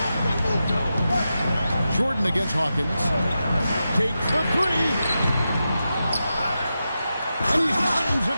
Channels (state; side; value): inverted; both; correlation -0.90